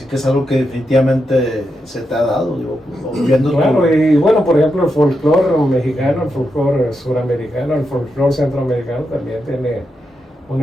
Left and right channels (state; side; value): normal; both; correlation 0.85